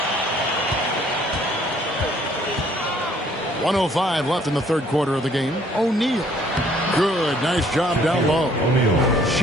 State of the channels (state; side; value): normal; both; correlation 0.61